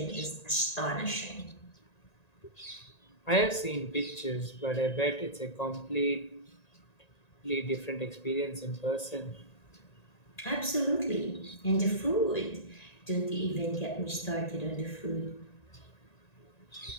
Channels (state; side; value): late; right; 1.9 ms